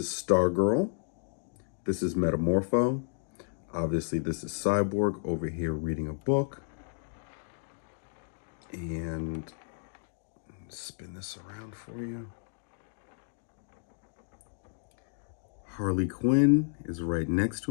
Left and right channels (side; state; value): right; silent; digital silence